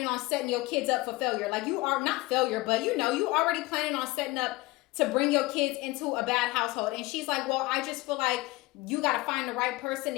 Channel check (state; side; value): quieter; right; 21.4 dB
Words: on setting your kids up for failure. Like, you are not failure, but you already planning on setting up to bring your kids into a bad household. And she's like, well, I just feel like you got to find the right person to